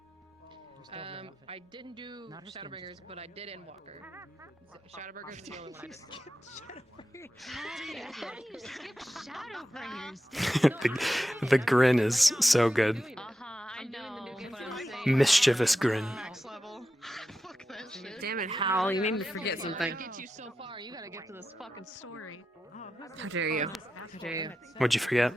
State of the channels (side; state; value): both; normal; correlation 0.90